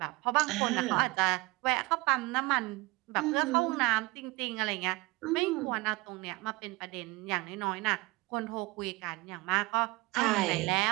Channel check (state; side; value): quieter; left; 22.7 dB